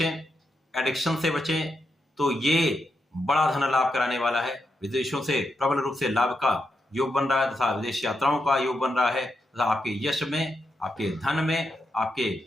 एडिक्शन से बचें, तो ये बड़ा धन लाभ कराने वाला है। विदेशों से प्रबल रूप से लाभ का योग बन रहा है, तथा विदेश यात्राओं का योग बन रहा है, तथा आपके यश में, आपके धन में, आपके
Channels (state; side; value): normal; both; correlation 0.84